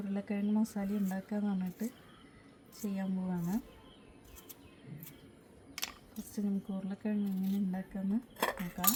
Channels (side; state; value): both; identical; correlation 1.00